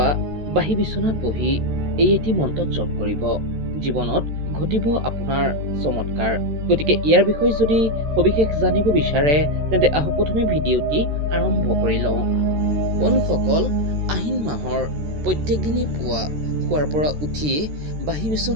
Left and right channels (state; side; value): late; left; 13 ms